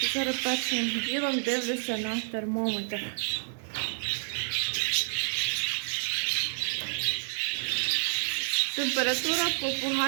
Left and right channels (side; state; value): left; silent; 58 dB below the other